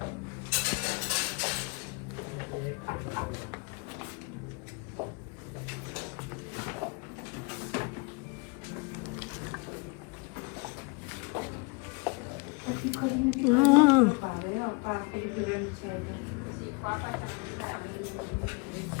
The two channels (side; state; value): right; quieter; 31.3 dB